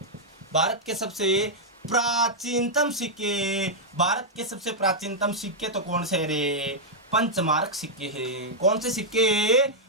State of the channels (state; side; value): normal; both; correlation -0.07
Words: सबसे प्राचीनतम सिक्के तो कौन से रे? पंचमारक सिक्के हैं। कौन से सिक्के?